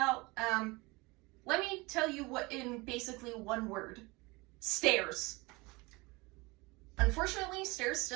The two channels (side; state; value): left; quieter; 24.4 dB